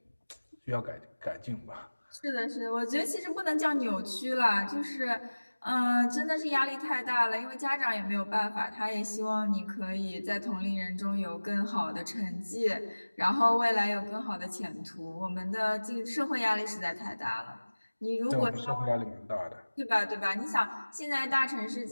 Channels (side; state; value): both; inverted; correlation -1.00